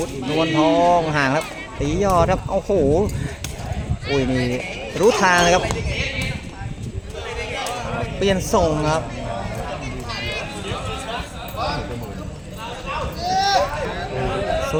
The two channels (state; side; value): identical; both; correlation 1.00